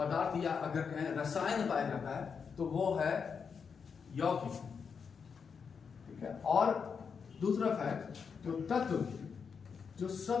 या अगर कहें रसायन पाया जाता है तो वो है यौगिक। ठीक है, और दूसरा फैक्ट, जो तत्व जो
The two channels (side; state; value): right; quieter; 6.1 dB